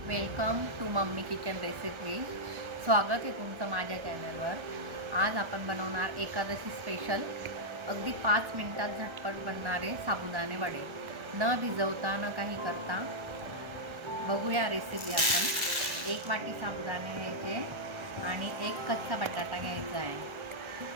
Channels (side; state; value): left; late; 1.4 ms